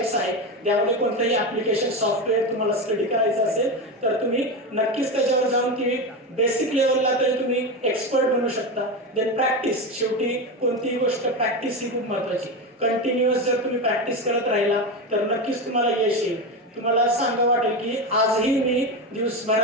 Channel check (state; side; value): normal; both; correlation 0.18